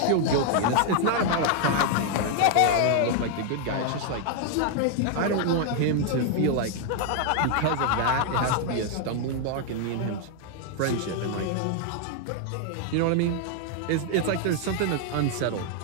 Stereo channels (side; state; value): both; different; correlation 0.00